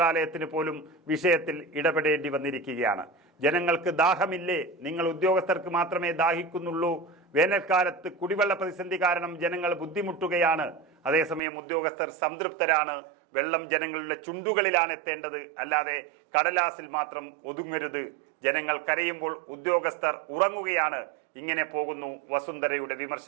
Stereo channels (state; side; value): drops out; left; at 11.4 s